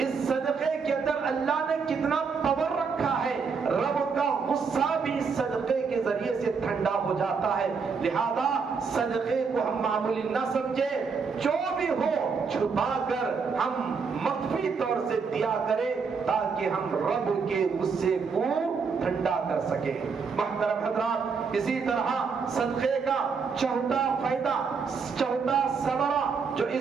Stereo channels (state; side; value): quieter; left; 5.4 dB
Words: صدقے کے اندر اللہ نے کتنا پاور رکھا ہے، رب کا غصہ بھی اس صدقے کے ذریعے سے ٹھنڈا ہو جاتا ہے۔ لہذا صدقے کو ہم معمولی نہ سمجھیں، جو بھی ہو چھپا کر ہم مخفی طور سے دیا کریں تاکہ ہم رب کے غصے کو ٹھنڈا کر سکیں۔ محترم حضرات، اسی طرح صدقے کا چوتھا فائدہ، چوتھا ثمرہ جو